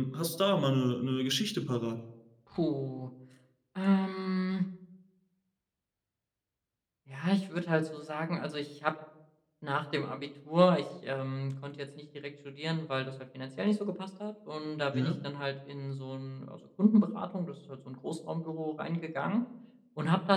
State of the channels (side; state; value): both; identical; correlation 1.00